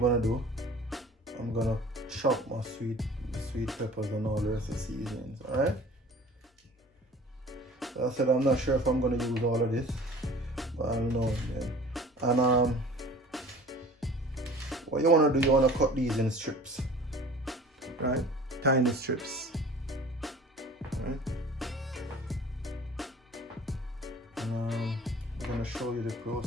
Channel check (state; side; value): normal; both; correlation 0.45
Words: do, I'm gonna chop my sweet peppers and all the rest of the seasonings. Alright? So I said I'm not sure if I'm gonna use all of this, but I'll know again. And what you wanna do, you wanna cut these in strips. Right? Tiny strips. Right? And I'm gonna show you the